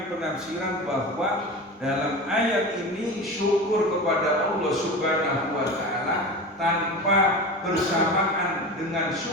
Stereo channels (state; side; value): normal; both; correlation 0.29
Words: penafsiran bahwa dalam ayat ini syukur kepada Allah Subhanahu wa taala tanpa bersamaan dengan